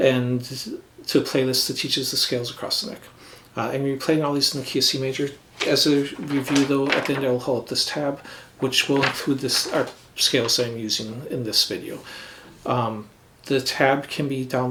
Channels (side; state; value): both; identical; correlation 1.00